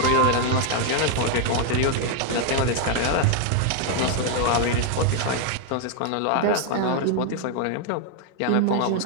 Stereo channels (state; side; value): different; both; correlation 0.00